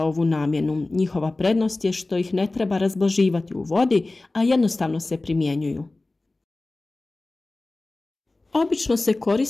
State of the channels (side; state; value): right; quieter; 3.1 dB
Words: ovu namjenu. Njihova prednost je što ih ne treba razblaživati u vodi, a jednostavno se primjenjuju. Obično se